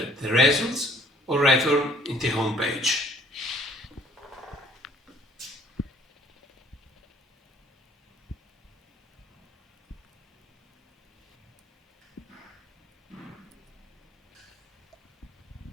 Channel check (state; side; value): normal; both; correlation 0.58